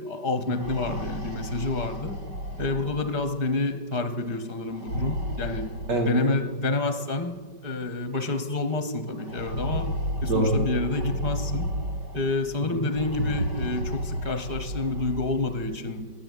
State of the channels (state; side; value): late; left; 5.1 ms